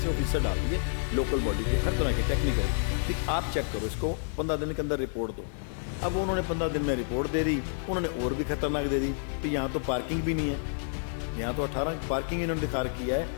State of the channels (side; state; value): right; silent; 58 dB below the other